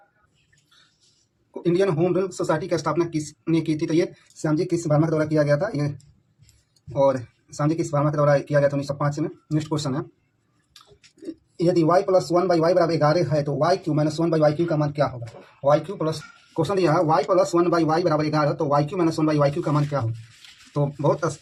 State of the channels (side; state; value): both; identical; correlation 1.00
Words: इंडियन होम रूल सोसाइटी की स्थापना किसने की थी? तो ये श्यामजी कृष्ण वर्मा के द्वारा किया गया था। ये और श्यामजी कृष्ण वर्मा के द्वारा किया गया था 1905 में। नेक्स्ट क्वेश्चन है, यदि y + 1/y = 11 है तो y³ - 1/y³ का मान क्या होगा? क्वेश्चन दिया है y + 1/y = 11, तो y³ - 1/y³ का मान क्या होगा? तो बहुत